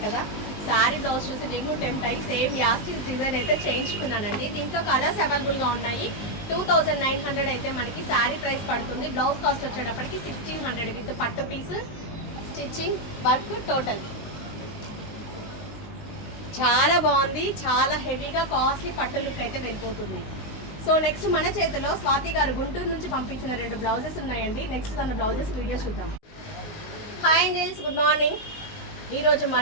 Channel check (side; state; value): right; late; 19 ms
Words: కదా, శారీ బ్లౌజ్ చూసి నేను టెంప్ట్ అయ్యి సేమ్ యాస్టీస్ డిజైన్ అయితే చేయించుకున్నానండి. దీంట్లో కలర్స్ అవైలబుల్గా ఉన్నాయి. 2900 అయితే మనకి శారీ ప్రైస్ పడుతుంది. బ్లౌజ్ కాస్ట్ వచ్చేటప్పటికి 1600 విత్ పట్టు పీస్, స్టిచ్చింగ్, వర్క్ టోటల్. చాలా బాగుంది, చాలా హెవీగా కాస్ట్లీ పట్టు లుక్ అయితే వెళ్ళిపోతుంది. సో నెక్స్ట్ మన చేతిలో స్వాతి గారు గుంటూరు నుంచి పంపించిన 2 బ్లౌజెస్ ఉన్నాయండి. నెక్స్ట్ తన బ్లౌజెస్ వీడియో చూద్దాం. Hi angels, good morning. ఈరోజు